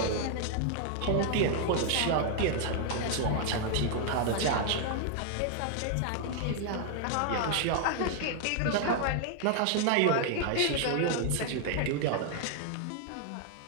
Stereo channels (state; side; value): different; both; correlation 0.00